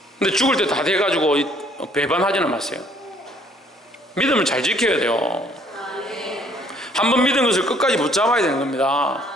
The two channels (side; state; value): both; normal; correlation 0.62